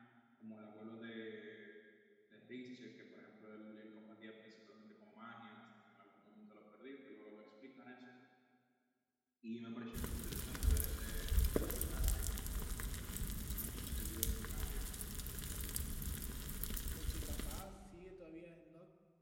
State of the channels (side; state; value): both; identical; correlation 1.00